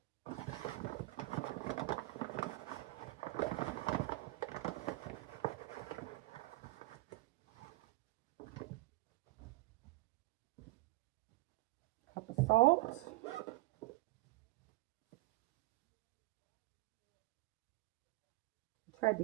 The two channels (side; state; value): left; quieter; 20.1 dB